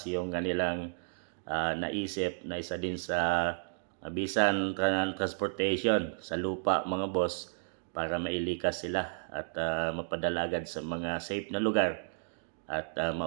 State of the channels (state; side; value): silent; left; digital silence